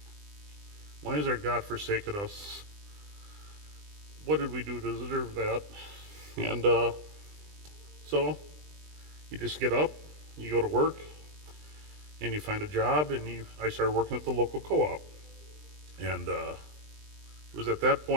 why has our God forsaken us? What did we do to deserve that? And so you just get up, you go to work, and you find a job, and I started working at the local co-op. And it was at that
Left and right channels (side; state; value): left; late; 20 ms